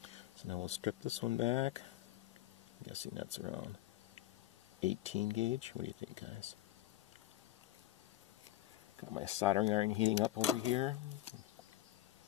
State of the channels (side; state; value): right; quieter; 14.8 dB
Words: So now we'll strip this one back. I'm guessing that's around 18 gauge. What do you think, guys? Got my soldering iron heating up over here.